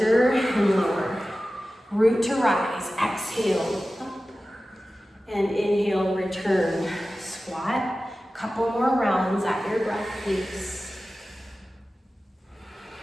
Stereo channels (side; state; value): both; normal; correlation 0.95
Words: and lower. Root to rise, exhale, up. And inhale, return, squat. Couple more rounds at your breath pace.